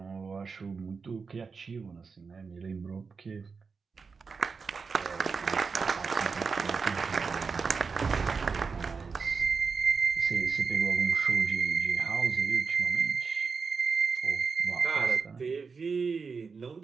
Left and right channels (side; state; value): left; quieter; 5.1 dB